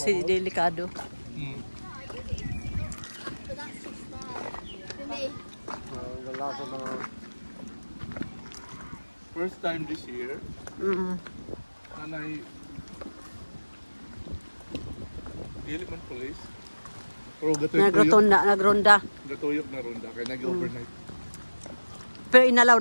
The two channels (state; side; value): inverted; both; correlation -1.00